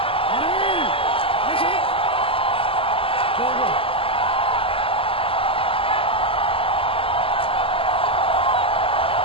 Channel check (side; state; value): right; late; 0.26 ms